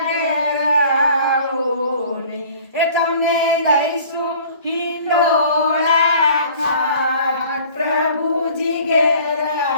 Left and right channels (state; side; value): inverted; both; correlation -0.49